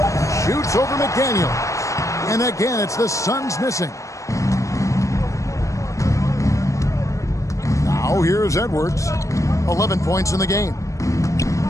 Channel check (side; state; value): right; late; 0.15 ms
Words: Shoots over McDaniels. And again, it's the Suns missing. Now here's Edwards. 11 points in the game.